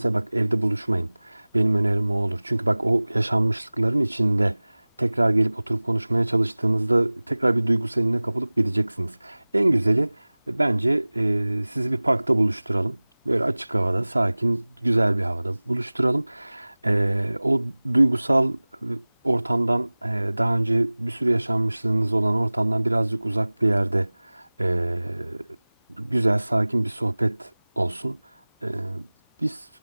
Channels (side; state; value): both; inverted; correlation -1.00